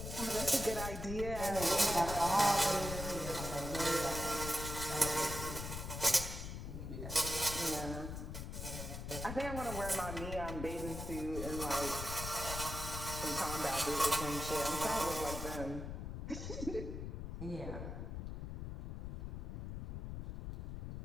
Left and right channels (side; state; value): left; noise; rumble, 6 dB below the sound